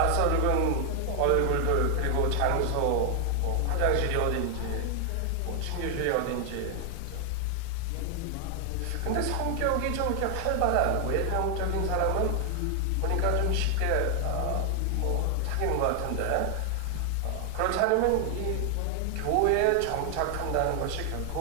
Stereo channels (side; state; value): both; different; correlation 0.00